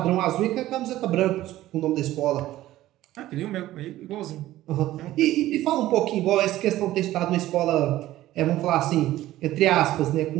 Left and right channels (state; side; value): quieter; left; 15.0 dB